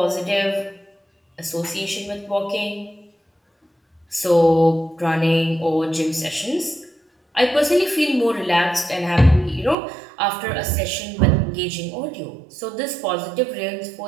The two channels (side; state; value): left; drops out; at 9.8 s